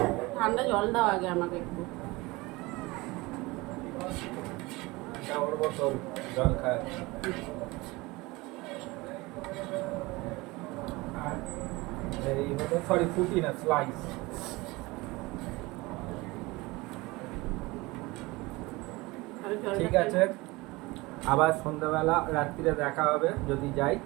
ঠান্ডা জল দাও আগে আমাকে একটু। একটা ওর বোতল জল খায়। আর এই হলো সরি ফুটি না স্লাইস। আমি জলটা ঠিক খাই। আছে, আবার সন্ধ্যাবেলা রাত্রিরে দেখা হবে যদি যাই,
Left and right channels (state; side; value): quieter; left; 22.5 dB